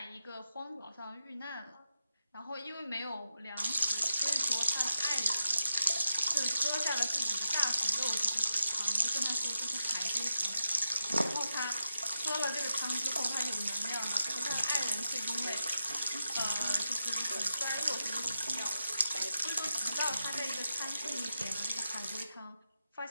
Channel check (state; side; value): inverted; both; correlation -0.86